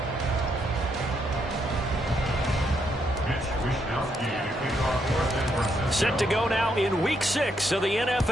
Set to go now in Week 6 of the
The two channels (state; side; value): normal; both; correlation 0.77